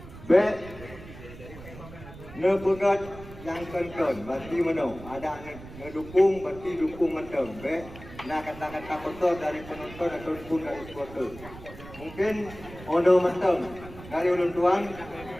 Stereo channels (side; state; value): right; noise; rumble, 16 dB below the sound